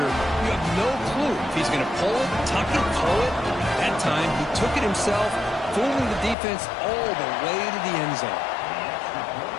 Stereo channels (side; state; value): right; drops out; at 6.4 s